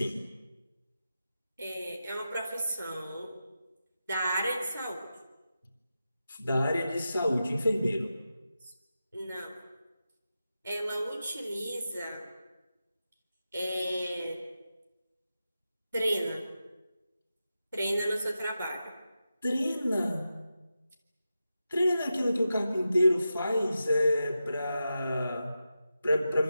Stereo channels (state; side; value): inverted; both; correlation -0.90